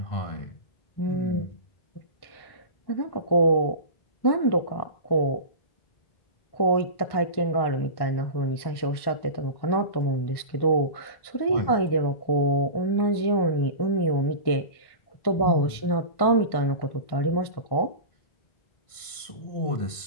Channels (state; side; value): late; right; 1.1 ms